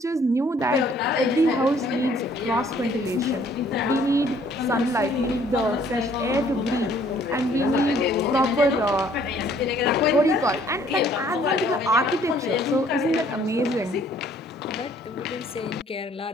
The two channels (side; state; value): both; normal; correlation 0.60